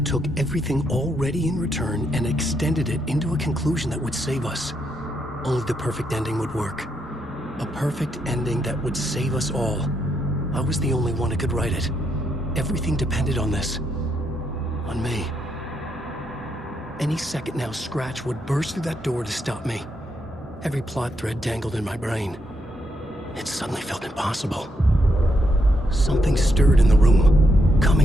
took everything already in Return and extended it into a conclusion that would save us. Only the perfect ending would work. A perfect ending that would save us all. I was the only one who could write it. Everything depended on this. On me. Any second now, Scratch would burst through that door to stop me. Every plot thread dangled in my brain. It suddenly felt impossible. Something stirred in the room,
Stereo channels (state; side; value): normal; both; correlation 0.79